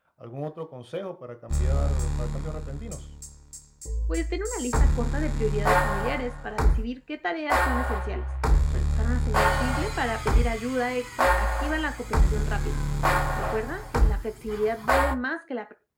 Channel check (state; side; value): identical; both; correlation 1.00